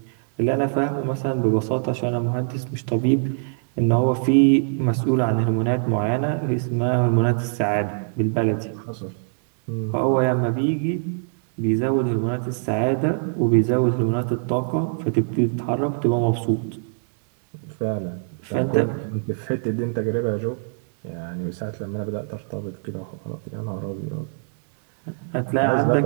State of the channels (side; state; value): left; silent; digital silence